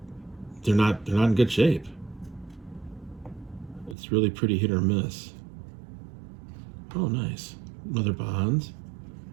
they're not in good shape. It's really pretty hit or miss. Oh, nice. Another bonds.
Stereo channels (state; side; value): drops out; left; at 4.0 s